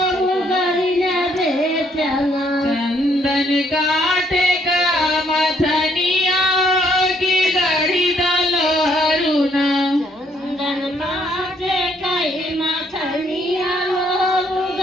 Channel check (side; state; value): both; normal; correlation 0.68